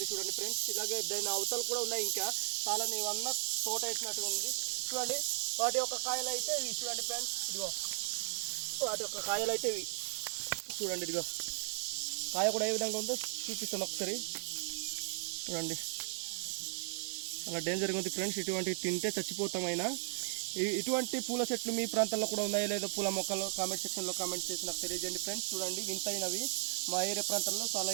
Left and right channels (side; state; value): left; silent; digital silence